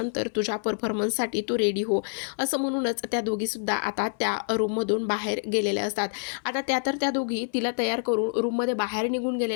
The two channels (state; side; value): silent; right; 60 dB below the other